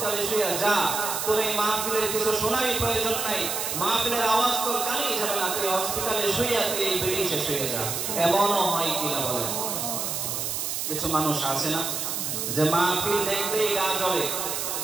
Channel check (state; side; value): noise; right; hiss, 2 dB below the sound